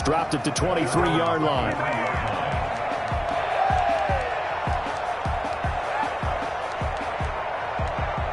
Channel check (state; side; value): identical; both; correlation 1.00